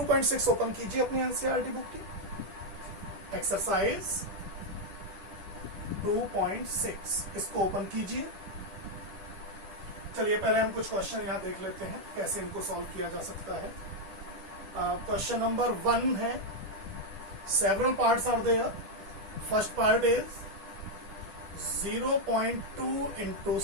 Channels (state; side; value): late; left; 10 ms